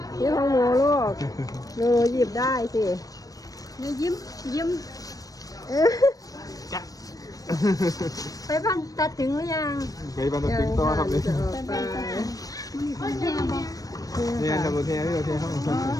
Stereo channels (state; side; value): late; right; 0.18 ms